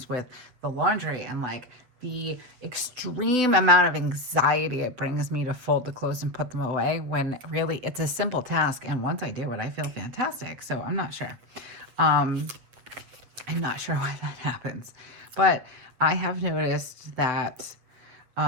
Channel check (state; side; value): late; left; 8.4 ms